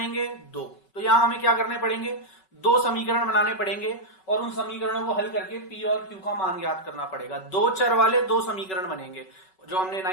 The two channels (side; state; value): right; late; 5.3 ms